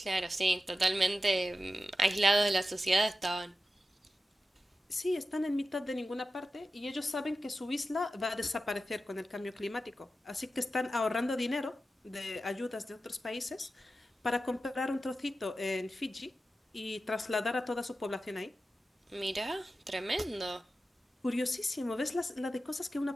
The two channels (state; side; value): normal; both; correlation 0.93